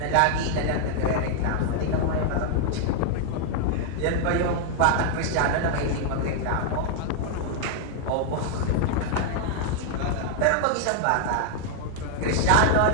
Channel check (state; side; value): different; both; correlation 0.00